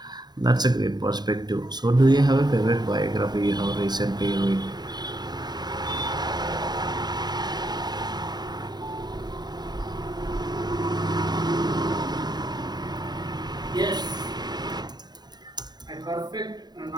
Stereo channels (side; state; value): left; late; 0.20 ms